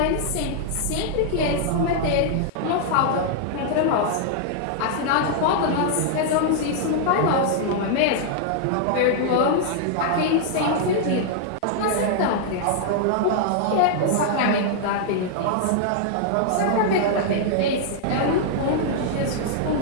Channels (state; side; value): different; both; correlation -0.01